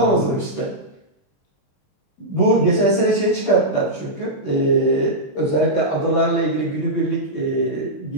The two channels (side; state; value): right; late; 20 ms